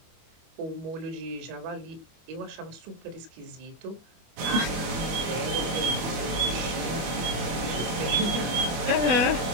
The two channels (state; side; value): late; left; 25 ms